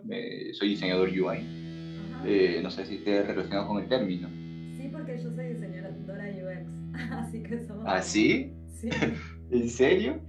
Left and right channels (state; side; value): identical; both; correlation 1.00